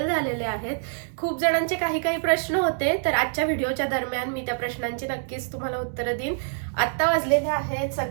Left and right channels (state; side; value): silent; left; digital silence